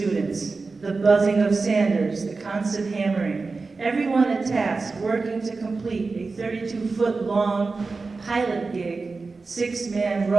the buzzing of sanders, the constant hammering, everyone at task working to complete a 32-foot long pilot gig 6-man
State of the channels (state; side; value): quieter; left; 4.0 dB